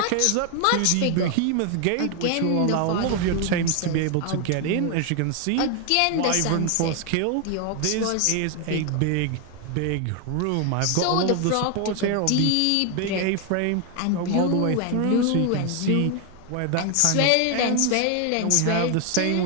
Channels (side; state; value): both; different; correlation 0.01